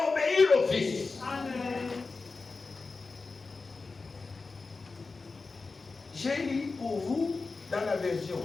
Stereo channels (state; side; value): quieter; right; 4.0 dB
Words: obéir au Fils. Amen. J'ai lu pour vous dans la version